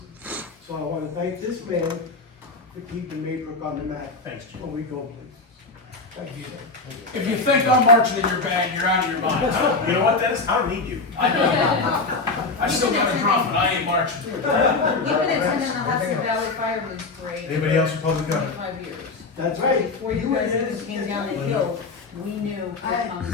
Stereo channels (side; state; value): right; quieter; 3.8 dB